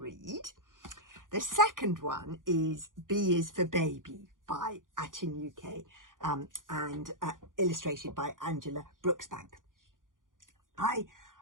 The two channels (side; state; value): left; late; 0.89 ms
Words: The second one is B is for Baby by Atin UK and illustrated by Angela Brooksbank. I